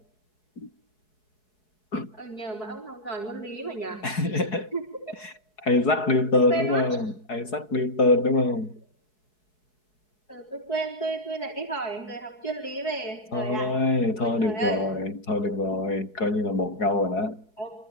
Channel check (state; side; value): late; right; 4.7 ms